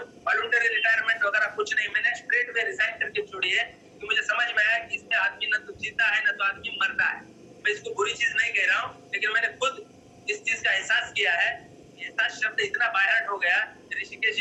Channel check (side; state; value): both; identical; correlation 1.00